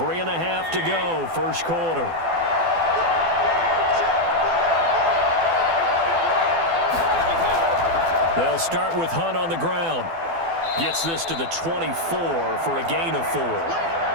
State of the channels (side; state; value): left; late; 12 ms